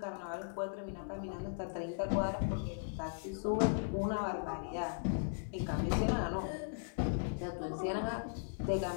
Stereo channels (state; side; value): silent; right; digital silence